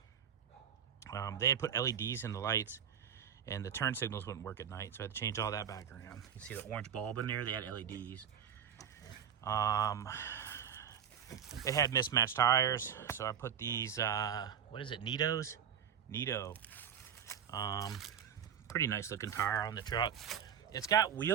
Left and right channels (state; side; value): quieter; left; 8.3 dB